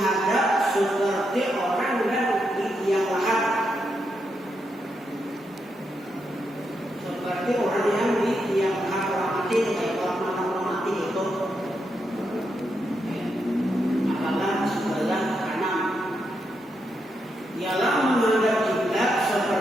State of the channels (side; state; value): both; normal; correlation 0.82